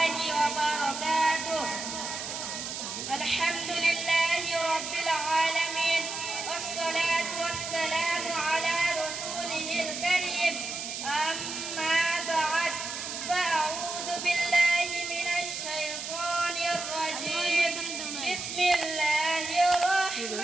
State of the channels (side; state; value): right; noise; hiss, 6 dB below the sound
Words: وبركاته. الحمد لله رب العالمين والصلاة والسلام على رسوله الكريم. أما بعد فأعوذ بالله من الشيطان الرجيم. بسم الله